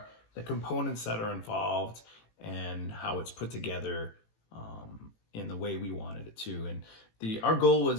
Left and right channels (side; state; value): right; late; 18 ms